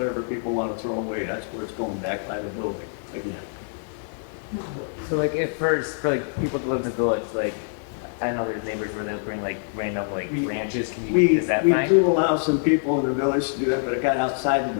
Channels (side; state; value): right; silent; 56 dB below the other